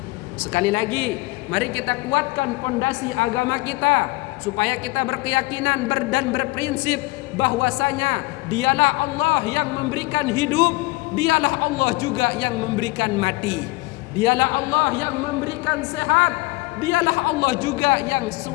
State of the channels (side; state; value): right; quieter; 22.8 dB